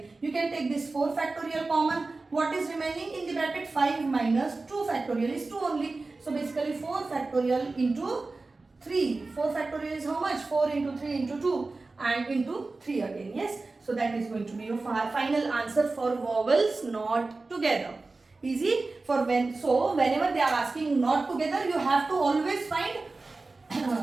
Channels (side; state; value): left; quieter; 3.5 dB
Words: You can take this 4 factorial common. What is remaining in the bracket? 5 minus 2 factorial is 2 only. So basically 4 factorial into 3. 4 factorial is how much? 4 into 3 into 2 and into 3 again. Yes. So that is going to be your final answer for vowels not together. Easy. For whenever they are asking not together, you have to always find